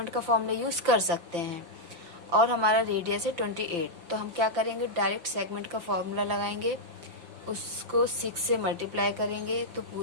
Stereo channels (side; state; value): left; late; 5.8 ms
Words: का फॉर्मूला यूज़ कर सकते हैं। और हमारा रेडियस है 28, तो हम क्या करेंगे, डायरेक्ट सेगमेंट का फॉर्मूला लगाएंगे, उसको 6 से मल्टीप्लाई करेंगे तो